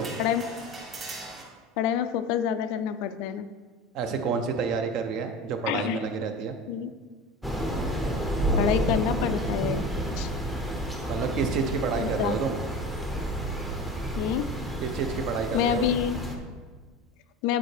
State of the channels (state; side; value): normal; both; correlation 0.32